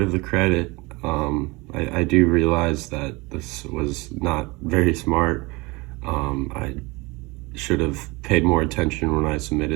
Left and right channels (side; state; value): left; quieter; 24.6 dB